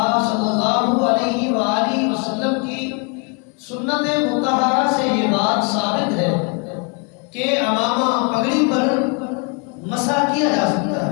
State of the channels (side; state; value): right; quieter; 33.6 dB